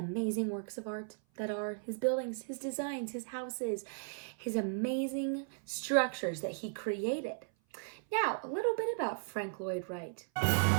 works of art that are his buildings, his designs, his houses, his amazing structures that he created. Now, a little bit about Frank Lloyd Wright.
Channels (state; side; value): silent; left; 54 dB below the other